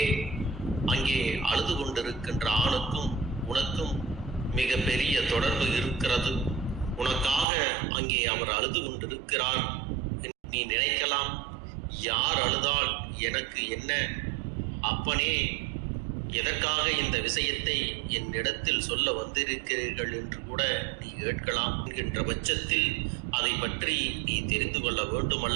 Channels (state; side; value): drops out; left; at 7.5 s